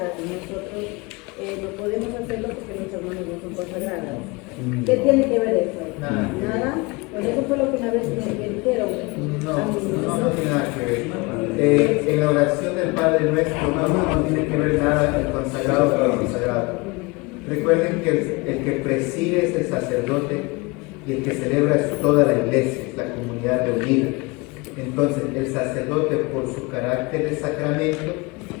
y nosotros no podemos hacerlo porque nuestras manos no son consagradas. ¿Qué tiene que ver eso? Nada. Pues eso fue lo que una vez me dijeron. No tiene nada que ver. En la oración del Padre Nuestro no tiene que ver nada el consagrado con el consagrado. Recuerden que el que preside es el sacerdote y el que celebra es toda la iglesia, la comunidad reunida. Entonces, el sacerdote, por su carácter de sacramento,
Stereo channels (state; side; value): quieter; right; 25.8 dB